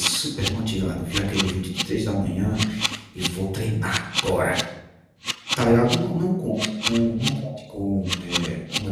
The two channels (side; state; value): both; identical; correlation 1.00